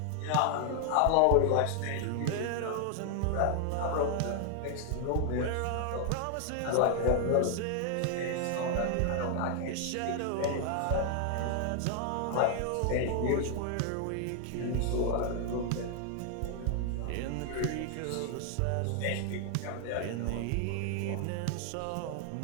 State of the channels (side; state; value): both; different; correlation 0.00